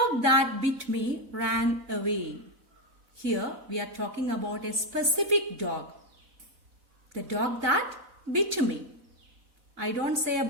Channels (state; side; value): late; left; 4.1 ms